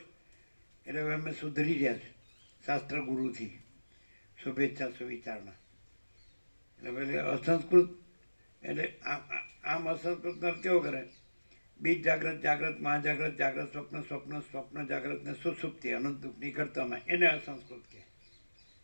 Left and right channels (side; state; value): both; inverted; correlation -1.00